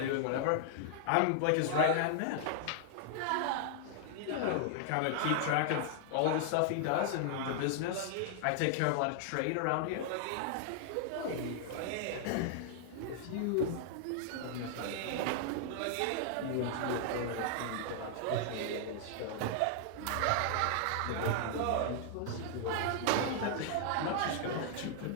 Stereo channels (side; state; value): both; different; correlation -0.01